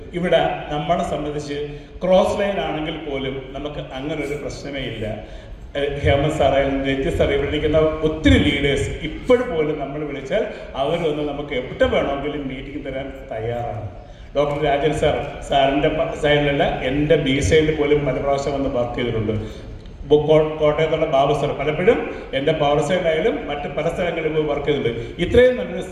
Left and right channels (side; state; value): both; identical; correlation 1.00